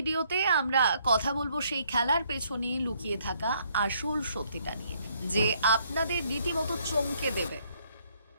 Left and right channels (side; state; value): both; inverted; correlation -0.68